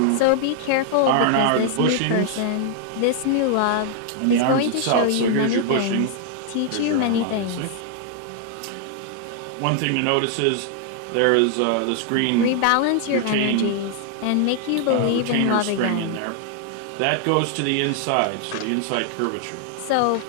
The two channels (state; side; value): different; both; correlation 0.00